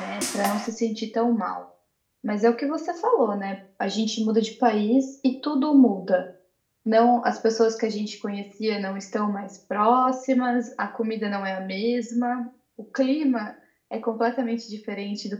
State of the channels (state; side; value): identical; both; correlation 1.00